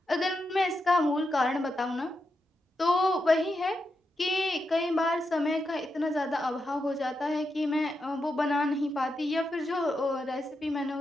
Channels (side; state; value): both; normal; correlation 0.86